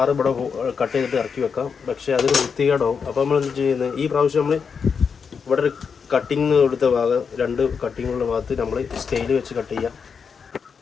ഇവിടെ കട്ട് ചെയ്തിട്ട് ഇറക്കി വെക്കാം. പക്ഷേ അതൊരു വൃത്തികേടാവും. അപ്പോൾ നമ്മൾ എന്ത് ചെയ്യുന്നത്, ഈ പ്രാവശ്യം നമ്മൾ ഇവിടെ ഒരു കട്ടിങ് കൊടുത്ത ഭാഗം, രണ്ട് കട്ടിങ്ങുള്ള ഭാഗത്ത് നമ്മൾ സ്കെയിൽ വെച്ച് കട്ട് ചെയ്യാം.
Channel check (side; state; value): right; quieter; 6.1 dB